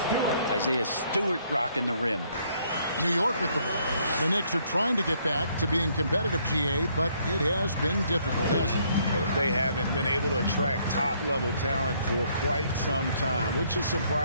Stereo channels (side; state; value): both; inverted; correlation -0.67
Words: Isaiah Stewart rocking the rim. New York with the ball. The Knicks are trying to get back to being competitive, GA, but it has been difficult, hasn't it? Well, they haven't been able to attract top-level talent for quite some time, which is